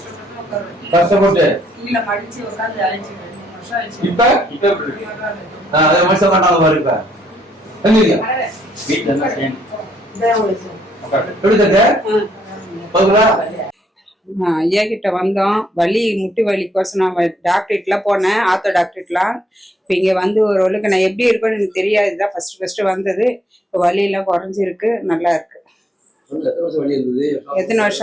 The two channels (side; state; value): both; normal; correlation 0.71